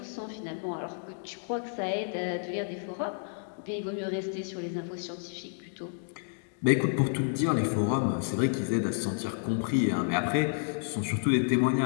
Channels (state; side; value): silent; right; digital silence